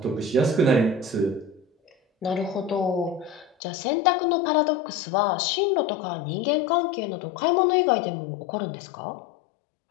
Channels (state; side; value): drops out; right; at 3.5 s